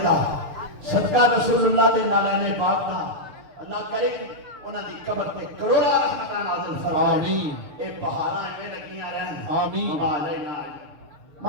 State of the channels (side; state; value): left; late; 6.6 ms